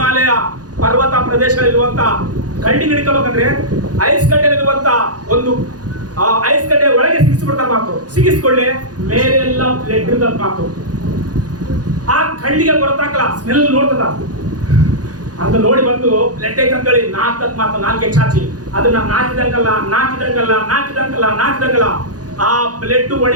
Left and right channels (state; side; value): late; left; 0.68 ms